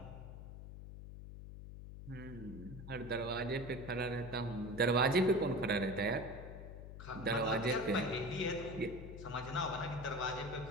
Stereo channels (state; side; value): noise; left; hum, 11 dB below the sound